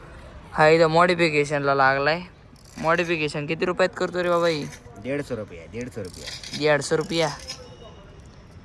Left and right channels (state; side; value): identical; both; correlation 1.00